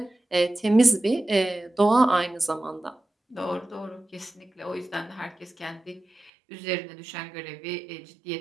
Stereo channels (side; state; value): left; drops out; at 6.3 s